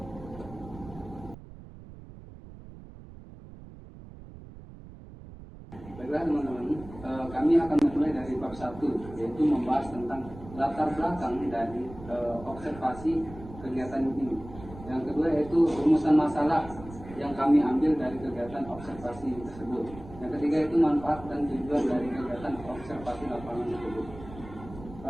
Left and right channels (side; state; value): right; noise; rumble, 16 dB below the sound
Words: Baiklah teman-teman, kami akan memulai dari bab 1, yaitu membahas tentang latar belakang dari observasi kegiatan ini. Yang kedua yaitu rumusan masalah yang kami ambil dari kegiatan observasi tersebut. Yang ketiga itu manfaat dan tujuan dari kegiatan observasi lapangan tersebut.